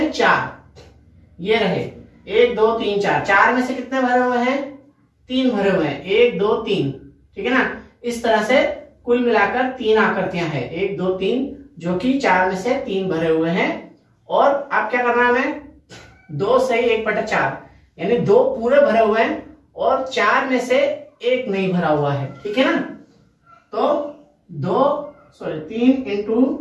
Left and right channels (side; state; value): both; identical; correlation 1.00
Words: 4 ये रहे, 1 2 3 4, 4 में से कितने भरे हुए हैं, 3 भरे हुए हैं, 1 2 3, ठीक है ना। इस तरह से कुल मिलाकर 3 आकृतियां हैं, 1 2 3, जो कि 4 में से 3 भरे हुए हैं। और अब क्या करना है हमें, 2 सही 1/4, यानी 2 पूरे भरे हुए हैं और 4 में से 1 नहीं भरा हुआ है, ठीक है ना। तो 3 इंटू